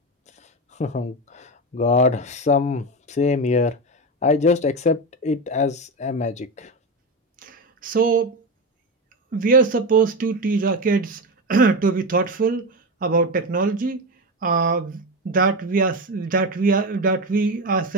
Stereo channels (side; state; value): both; normal; correlation 0.17